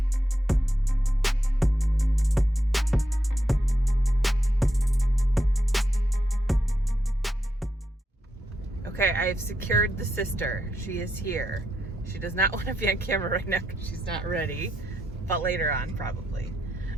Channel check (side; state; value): both; normal; correlation 0.82